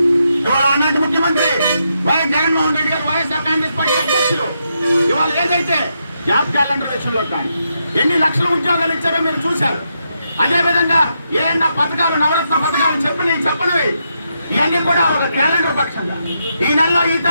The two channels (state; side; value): inverted; both; correlation -0.82